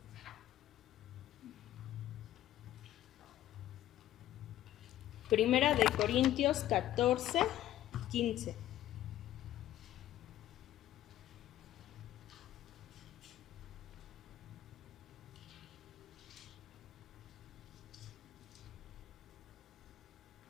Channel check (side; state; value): right; quieter; 13.3 dB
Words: Primera de Corintios 14, 15.